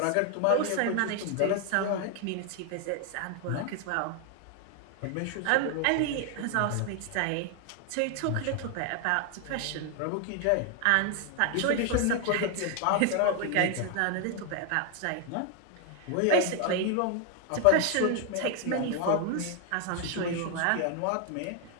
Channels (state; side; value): different; both; correlation 0.00